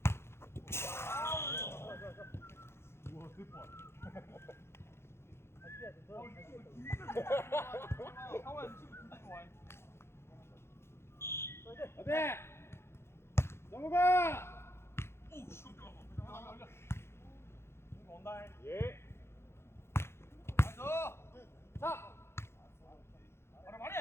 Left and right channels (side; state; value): right; late; 0.12 ms